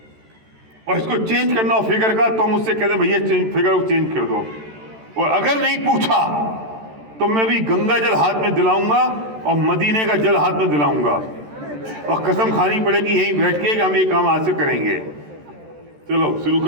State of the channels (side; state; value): left; late; 13 ms